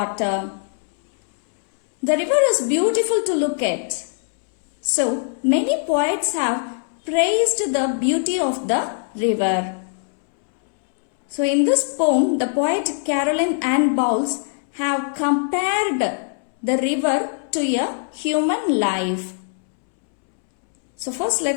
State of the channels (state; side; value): silent; right; 65 dB below the other